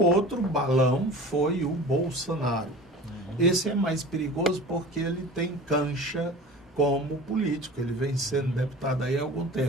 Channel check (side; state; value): both; normal; correlation 0.38